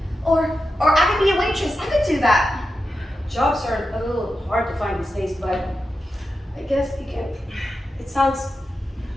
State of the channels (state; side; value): normal; both; correlation 0.90